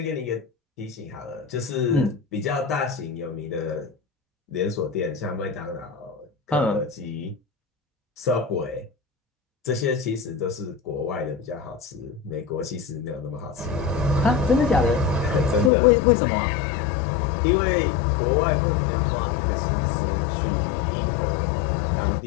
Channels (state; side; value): drops out; right; at 15.7 s